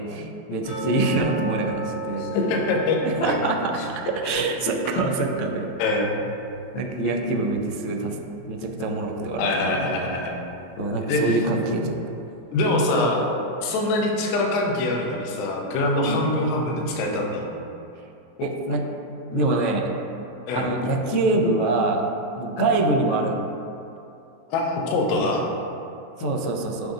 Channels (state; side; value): late; right; 24 ms